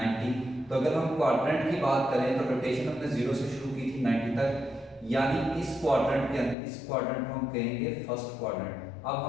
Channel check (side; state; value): right; drops out; at 6.6 s